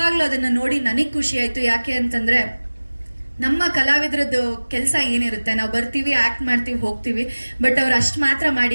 ಅದನ್ನು ನೋಡಿ ನನಗೆ ಖುಷಿ ಆಯಿತು. ಯಾಕೆ ಅಂತಂದರೆ ನಮ್ಮ ಕಲಾವಿದರದ್ದು ಕೆಲಸ ಏನಿರುತ್ತೆ, ನಾವು ಬರ್ತೀವಿ, ಆ್ಯಕ್ಟ್ ಮಾಡ್ತೀವಿ, ಹೋಗ್ತೀವಿ. ಬಟ್ ಅವ್ರು ಅಷ್ಟು ಮಾತ್ರ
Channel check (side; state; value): both; inverted; correlation -1.00